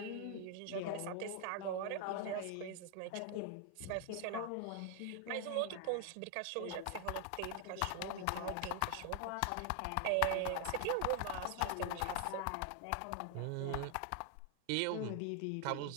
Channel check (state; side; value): different; both; correlation 0.00